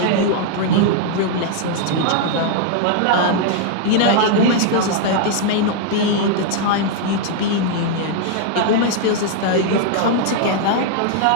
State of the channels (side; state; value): both; different; correlation 0.00